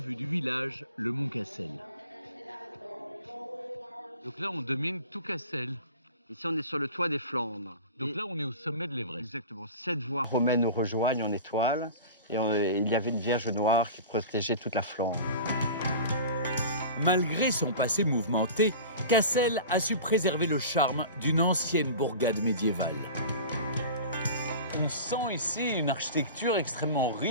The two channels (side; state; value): both; inverted; correlation -0.36